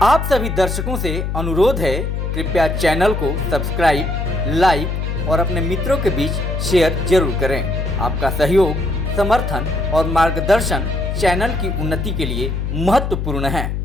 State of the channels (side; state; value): left; noise; hum, 2 dB below the sound